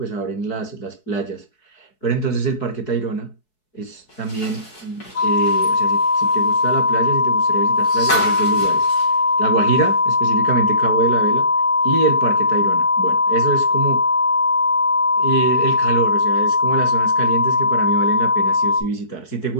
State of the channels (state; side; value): late; right; 4.7 ms